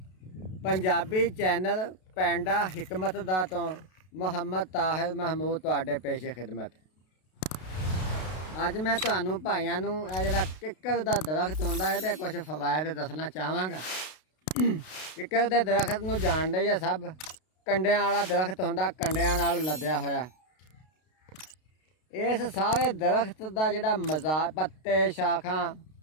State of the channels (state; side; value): late; right; 32 ms